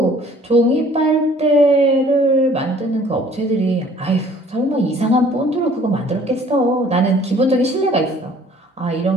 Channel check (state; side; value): normal; both; correlation 0.55